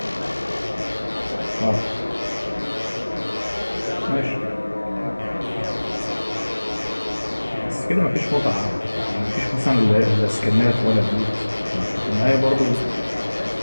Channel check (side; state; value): both; inverted; correlation -1.00